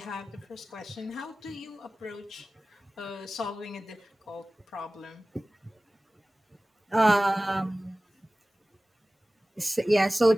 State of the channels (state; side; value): normal; both; correlation 0.97